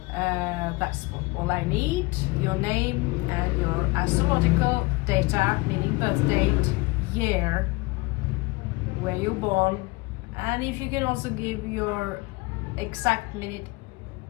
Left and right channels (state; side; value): quieter; right; 23.8 dB